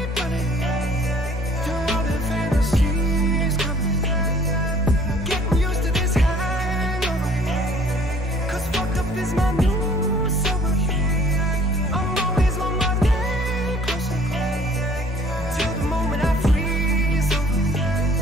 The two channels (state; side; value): normal; both; correlation 0.55